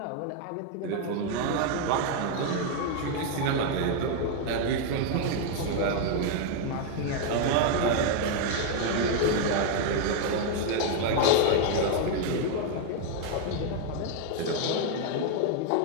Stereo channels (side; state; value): both; different; correlation 0.01